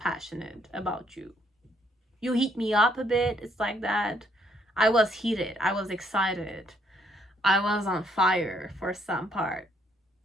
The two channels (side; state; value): both; normal; correlation 0.69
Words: about you. You heat me up a bit, it's like that. I was heated, I was excited, I was on fire for some part.